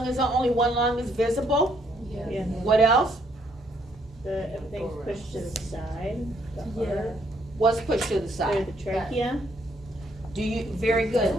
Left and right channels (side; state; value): both; normal; correlation 0.70